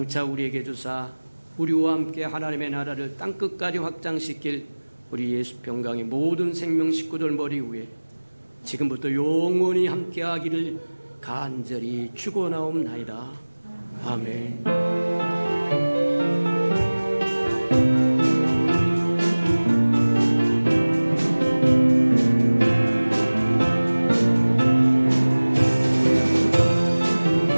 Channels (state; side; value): inverted; both; correlation -1.00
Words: 우리에게 주사 우리와 함께 하나님의 나라를 땅끝까지 확장시킬 우리 예수 평강의 모든 생명 식구들 머리 위에 지금부터 영원히 함께하기를 간절히 축원하옵나이다. 아멘.